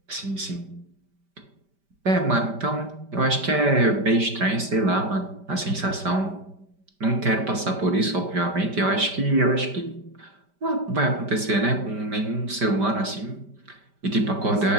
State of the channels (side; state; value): left; late; 5.1 ms